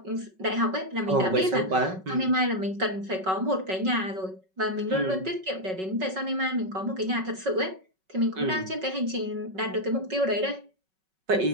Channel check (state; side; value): late; left; 5.3 ms